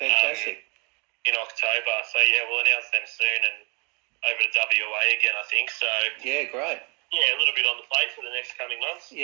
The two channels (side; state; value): left; quieter; 32.7 dB